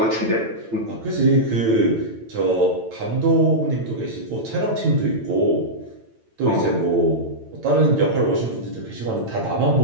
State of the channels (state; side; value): late; left; 9.0 ms